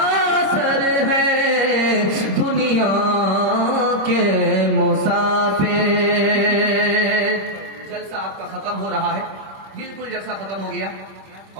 اثر ہے، دنیا کے مسافر۔ جلسہ آپ کا ختم ہو رہا ہے، بالکل جلسہ ختم ہو گیا،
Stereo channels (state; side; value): late; left; 26 ms